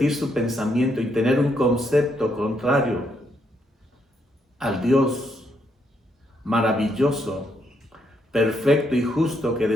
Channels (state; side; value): normal; both; correlation 0.76